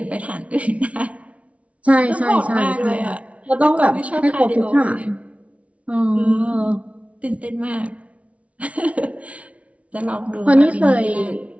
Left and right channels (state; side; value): late; left; 0.064 ms